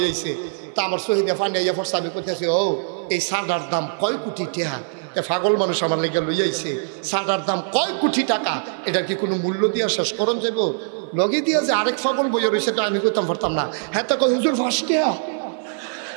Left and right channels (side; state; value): left; silent; 55 dB below the other